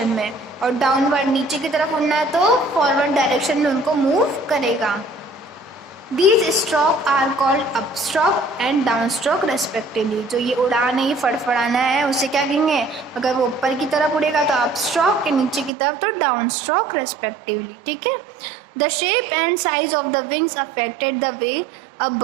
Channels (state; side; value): drops out; left; at 15.7 s